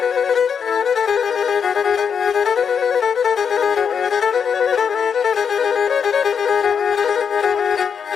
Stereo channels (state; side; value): quieter; right; 6.9 dB